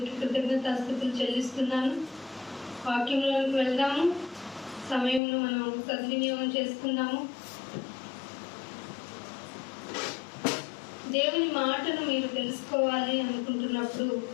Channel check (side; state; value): right; drops out; at 5.2 s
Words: కృతజ్ఞతాస్తుతులు చెల్లిస్తున్నాను. వాక్యంలోకి వెళ్దాము. సమయంలో మనం సద్వినియోగం చేసుకుందాము. దేవుని మాటను మీరు తెలుసుకోవాలి అనుకుంటున్నప్పుడు